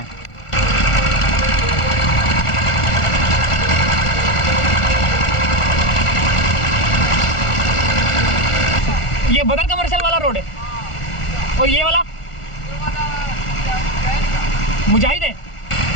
ये बदर कमर्शियल वाला रोड है और ये वाला मुजाहिद है।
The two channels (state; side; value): late; right; 1.4 ms